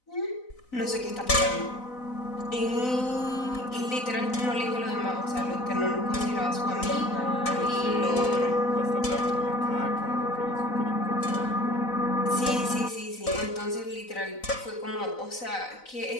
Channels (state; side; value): late; right; 4.0 ms